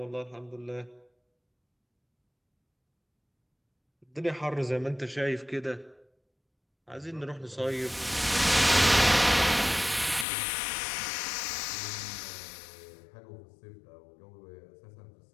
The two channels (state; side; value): drops out; right; at 10.2 s